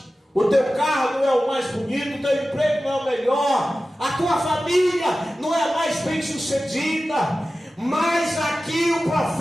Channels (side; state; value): both; normal; correlation 0.95